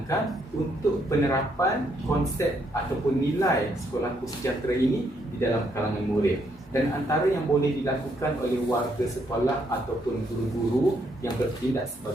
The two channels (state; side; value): normal; both; correlation 0.73